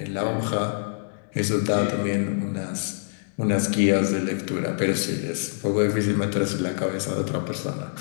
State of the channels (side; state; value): right; silent; digital silence